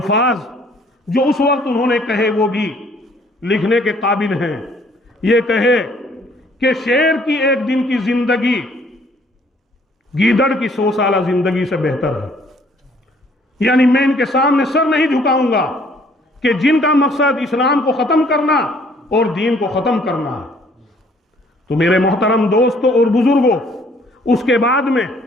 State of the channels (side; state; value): both; normal; correlation 0.61